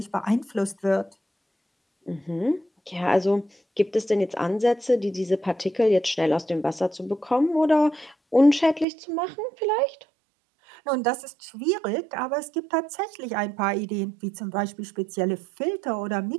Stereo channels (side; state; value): left; drops out; at 8.8 s